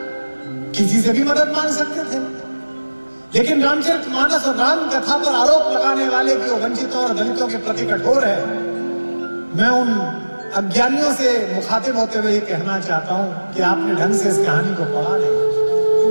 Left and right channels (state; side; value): inverted; both; correlation -1.00